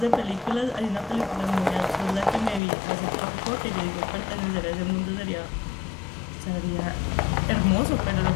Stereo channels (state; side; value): drops out; right; at 2.6 s